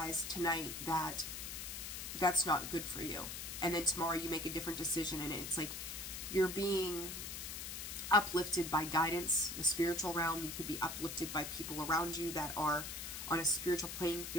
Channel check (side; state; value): left; noise; hiss, 6 dB below the sound